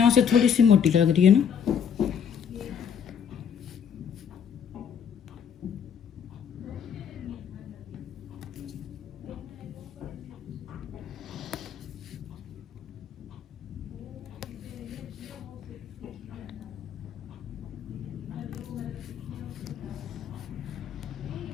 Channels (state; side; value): quieter; right; 7.6 dB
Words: से थोड़ी सी मोटी लग रही है ना।